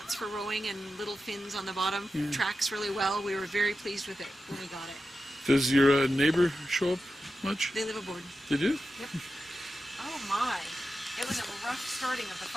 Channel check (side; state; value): both; normal; correlation 0.91